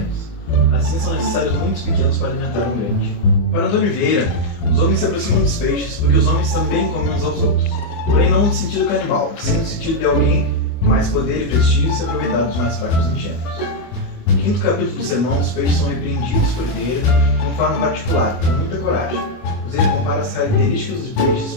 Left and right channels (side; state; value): right; late; 24 ms